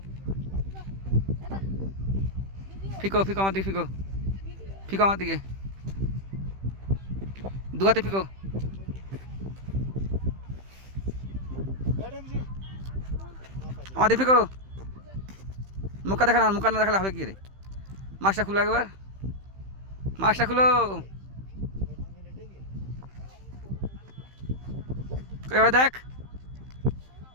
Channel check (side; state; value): left; late; 15 ms